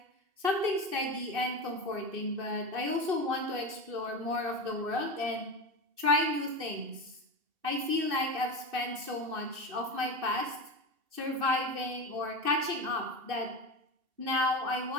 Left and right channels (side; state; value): left; late; 2.6 ms